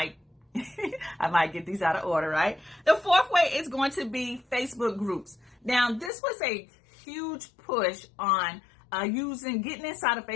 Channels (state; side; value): drops out; right; at 6.1 s